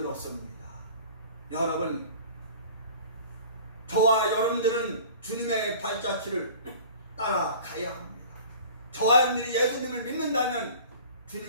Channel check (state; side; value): inverted; both; correlation -0.44